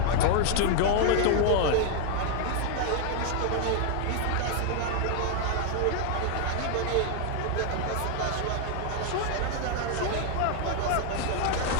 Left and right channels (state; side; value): different; both; correlation 0.00